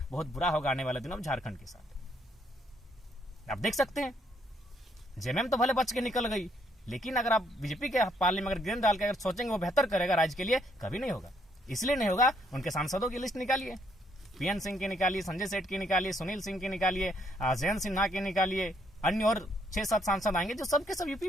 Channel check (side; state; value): both; normal; correlation 0.71